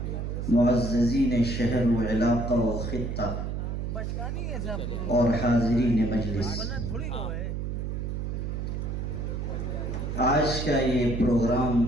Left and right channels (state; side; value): noise; right; hum, 3 dB below the sound